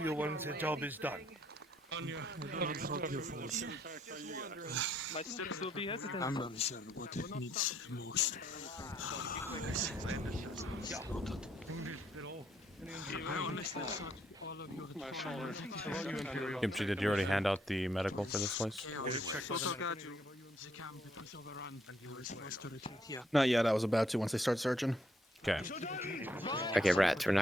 once the job is done. My steps will be hesitant. I'm not sure what it needs most. Kimchi, did you already hand out the medical for this place? Not yet, I was about to once they start searching. Okay. Okay, Rats, we're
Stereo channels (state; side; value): normal; both; correlation 0.70